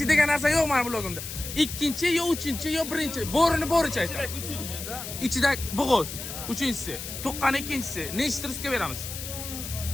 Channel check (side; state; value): left; noise; hiss, 8 dB below the sound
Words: degan narsa yo'q meni blogimda. Ikkinchi yo uchinchi yo birinchi. Bo'rini bo'richa aytdim. Uchinchi. Ichida bo'g'oz. Uchinchisi, tuqqan ikkinchisi. Nechta rizqga beramiz?